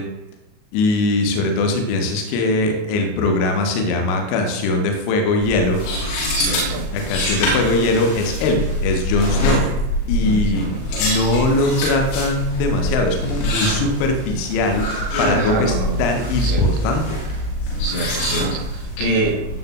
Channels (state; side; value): late; right; 38 ms